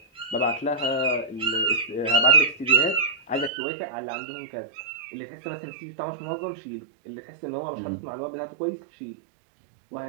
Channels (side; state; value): left; drops out; at 3.5 s